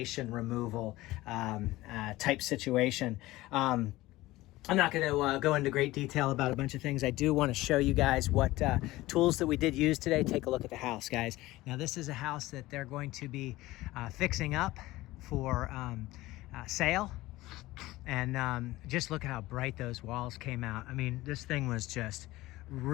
removal type situation. I'm not going to go into great detail about a bunch of things. I do want to show you guys what tools that we did use today. Take a look at the house, guys. Now, this is a house that they're going to be fixing up for sale. And just look at how bright those walls came out. I mean, this thing was just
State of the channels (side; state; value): right; quieter; 18.1 dB